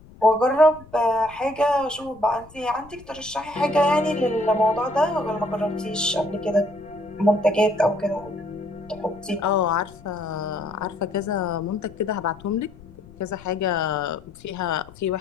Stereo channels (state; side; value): noise; left; rumble, 21 dB below the sound